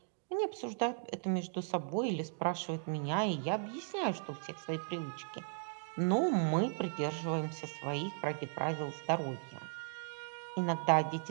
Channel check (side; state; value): left; silent; digital silence